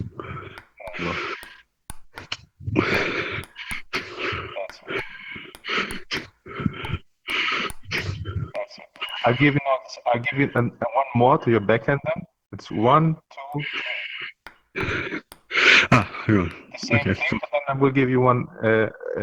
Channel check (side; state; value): both; identical; correlation 1.00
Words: I'll give you one more to your backhand then. It's 1, 2. Ah, hang on. Same Okay. thing, but then I will give you one